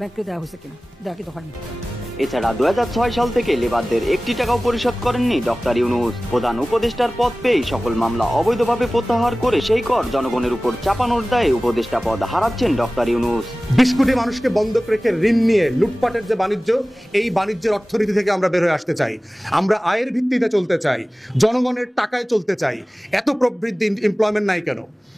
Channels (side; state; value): both; normal; correlation 0.97